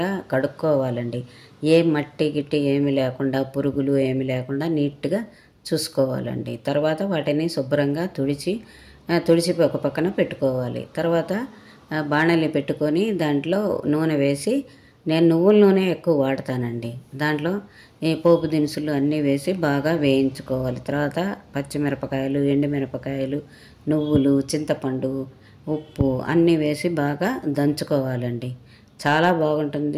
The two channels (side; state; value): both; identical; correlation 1.00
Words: కడుక్కోవాలండి. ఏ మట్టి గిట్టి ఏమి లేకుండా, పురుగులు ఏమి లేకుండా నీట్గా చూసుకోవాలండి. తర్వాత వాటిని శుభ్రంగా తుడిచి ఒక పక్కన పెట్టుకోవాలి. తర్వాత బాణలి పెట్టుకొని దాంట్లో నూనె వేసి, నేను నువ్వుల నూనె ఎక్కువ వాడతానండి. దాంట్లో ఈ పోపు దినుసులు అన్నీ వేసి బాగా వేయించుకోవాలి. తర్వాత పచ్చిమిరపకాయలు, ఎండుమిరపకాయలు, నువ్వులు, చింతపండు, ఉప్పు అన్నీ వేసి బాగా దంచుకోవాలండి. చాలా